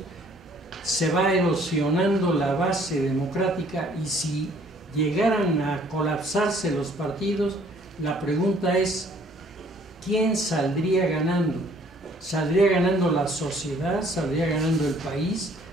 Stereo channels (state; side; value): normal; both; correlation 0.59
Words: se va erosionando la base democrática, y si llegaran a colapsarse los partidos, la pregunta es, ¿quién saldría ganando? ¿Saldría ganando la sociedad? ¿Saldría ganando el país?